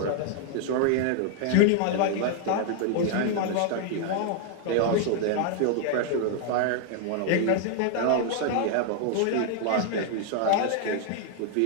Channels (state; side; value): different; both; correlation 0.00